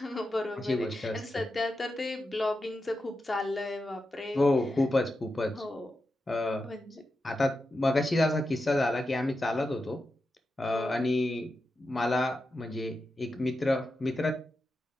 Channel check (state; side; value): normal; both; correlation 0.89